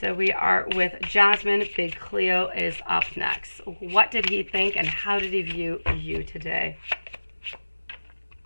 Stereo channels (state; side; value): inverted; both; correlation -1.00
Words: we are with Jasmine. Big Cleo is up next. What did he think, and how did he view you today?